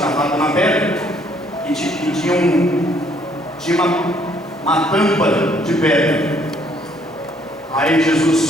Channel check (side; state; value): both; normal; correlation 0.65